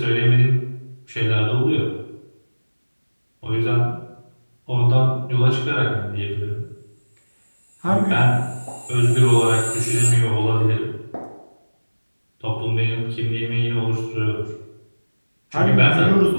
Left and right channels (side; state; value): both; inverted; correlation -1.00